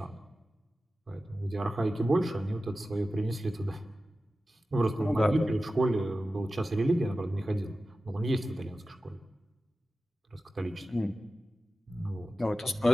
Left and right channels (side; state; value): both; normal; correlation 0.94